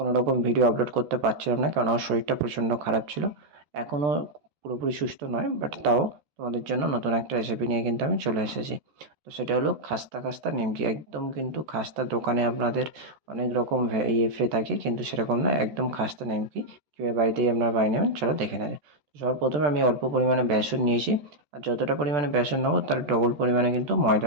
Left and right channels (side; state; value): left; late; 14 ms